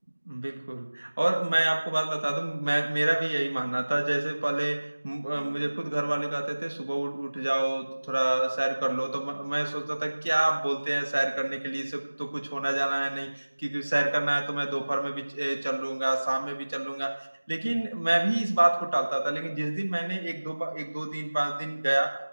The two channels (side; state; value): both; inverted; correlation -1.00